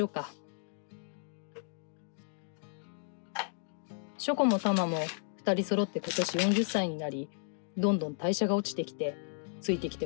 うか。ショコもタマも2人揃って今年40歳になり、どんどん代謝が落ちてきて、ついてき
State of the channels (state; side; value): silent; right; digital silence